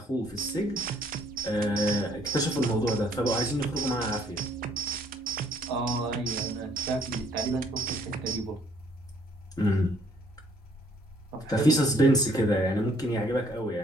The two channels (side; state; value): both; normal; correlation 0.64